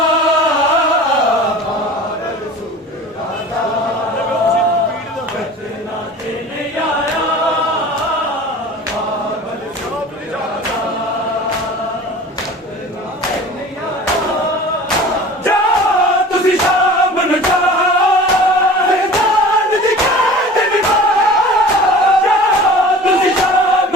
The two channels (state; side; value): normal; both; correlation 0.41